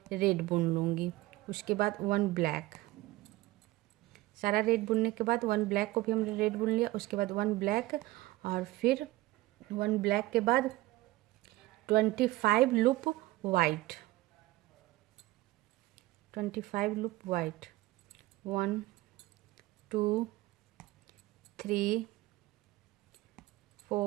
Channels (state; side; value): quieter; left; 18.3 dB